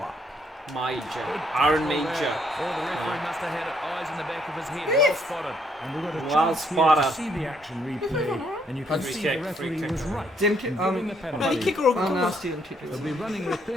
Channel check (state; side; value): normal; both; correlation 0.71